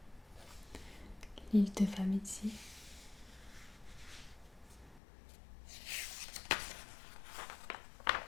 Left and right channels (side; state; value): right; drops out; at 5.0 s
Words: l'île de Famizzi,